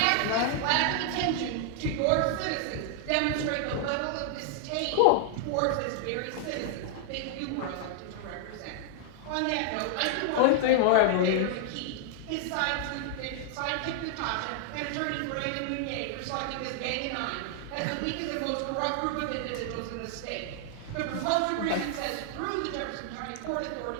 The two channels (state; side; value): different; both; correlation -0.01